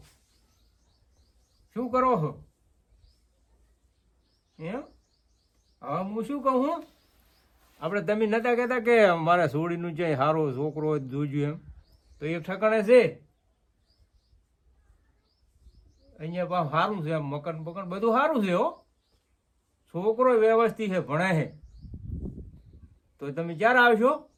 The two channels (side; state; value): both; identical; correlation 1.00